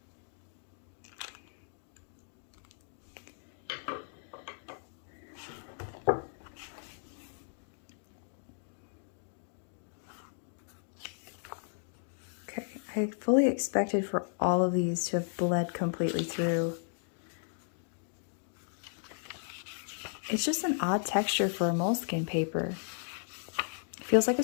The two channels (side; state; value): right; silent; digital silence